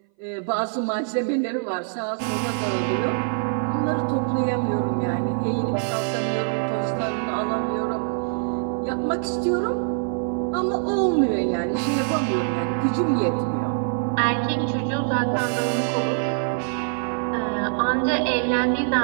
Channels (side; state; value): left; silent; 60 dB below the other